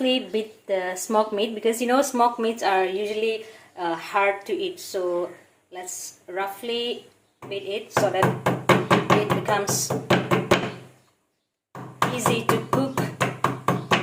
beat the smoked meat, because you know smoked meats are usually hard to eat. So let's roughly beat it so that it becomes easy to cook.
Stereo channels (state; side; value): identical; both; correlation 1.00